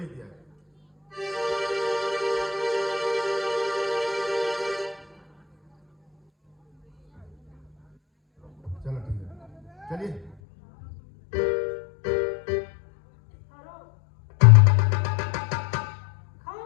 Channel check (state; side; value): drops out; right; at 10.4 s